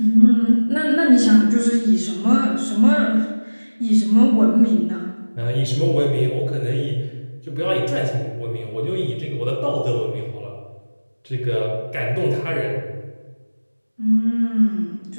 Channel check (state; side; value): inverted; both; correlation -1.00